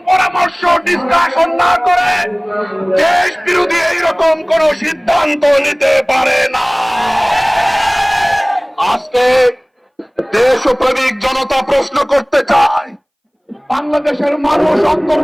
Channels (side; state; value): both; identical; correlation 1.00